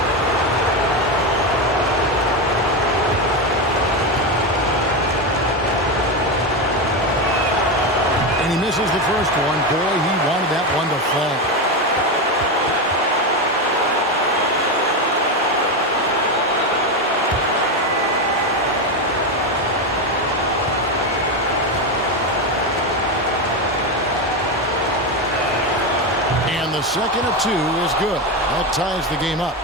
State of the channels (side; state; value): both; normal; correlation 0.13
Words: And he misses the first one. Boy, he wanted that one to fall. The second of 2 is good. That ties the game up.